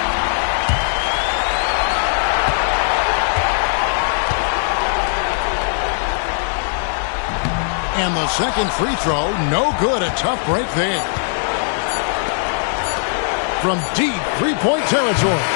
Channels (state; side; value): silent; right; digital silence